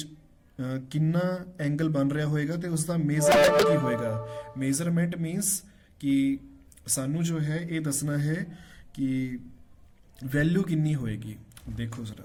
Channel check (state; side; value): identical; both; correlation 1.00